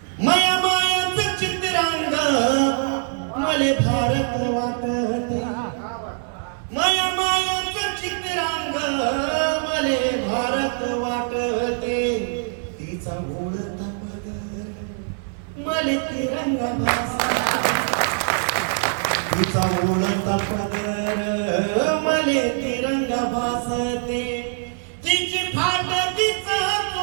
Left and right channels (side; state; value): left; silent; 63 dB below the other